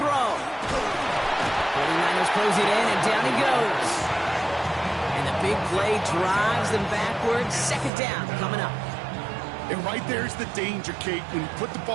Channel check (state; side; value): drops out; left; at 7.9 s